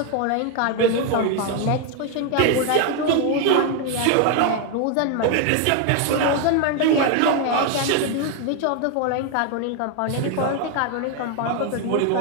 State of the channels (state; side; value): different; both; correlation 0.01